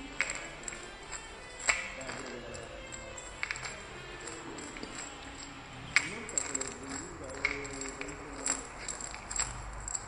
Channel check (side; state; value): both; identical; correlation 1.00